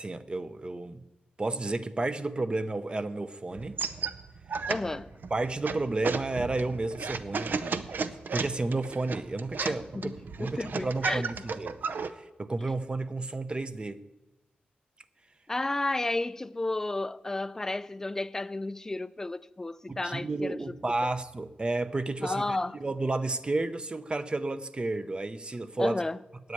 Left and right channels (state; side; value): normal; both; correlation 0.86